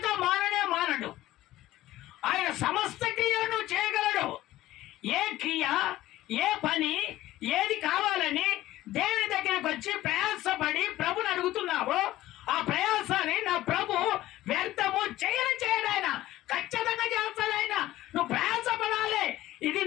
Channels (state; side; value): quieter; right; 15.6 dB